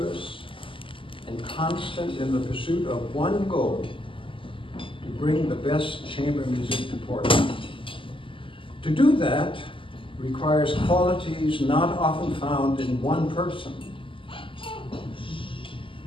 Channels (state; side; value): late; right; 0.25 ms